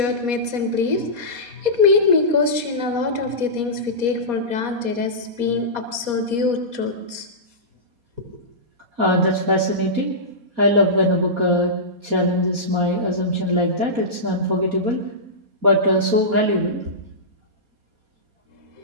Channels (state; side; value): late; left; 4.2 ms